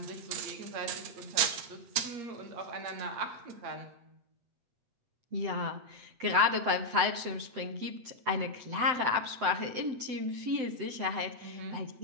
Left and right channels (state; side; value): late; left; 7.9 ms